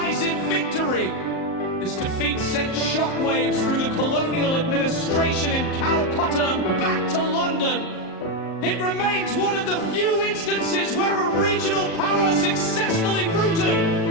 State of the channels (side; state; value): right; late; 38 ms